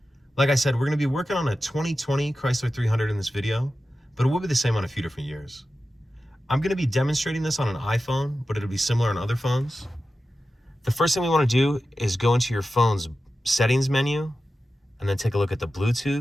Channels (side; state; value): both; normal; correlation 0.93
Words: Like I said, we're going to be working on a 2020 Chrysler 300 in this video, but it will be the same on a few different years. I'm going to be demonstrating this on an iPhone, but it'll be similar on other phones. The first thing we want to do is go into your phone's settings menu and then take a look at the